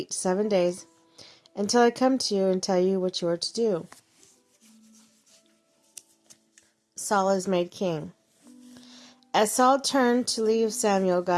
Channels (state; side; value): identical; both; correlation 1.00